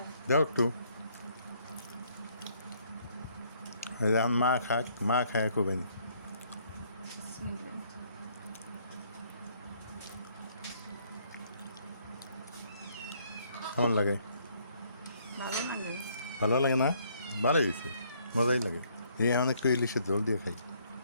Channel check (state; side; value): inverted; both; correlation -0.66